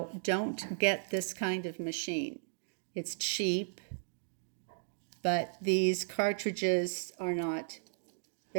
don't get this kind of machine. It's cheap, but these cartridges are not,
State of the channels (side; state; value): left; silent; digital silence